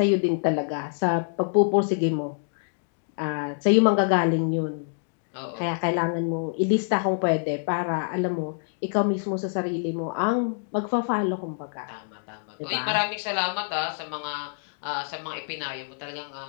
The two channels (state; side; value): silent; right; digital silence